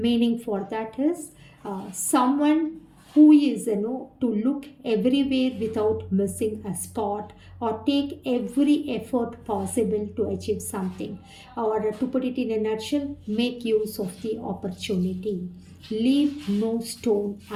for that is someone who is, to look everywhere without missing a spot, or take every effort possible to achieve something, or to put it in a nutshell, make use of the opportunity. Leave no stone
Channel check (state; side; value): identical; both; correlation 1.00